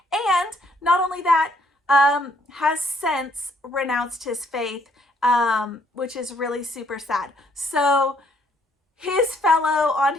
and not only that, has since renounced his faith, which is really super sad. So his fellow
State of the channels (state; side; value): normal; both; correlation 0.67